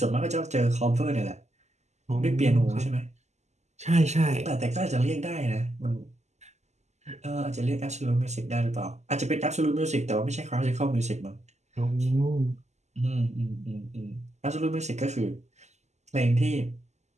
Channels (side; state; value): left; late; 0.33 ms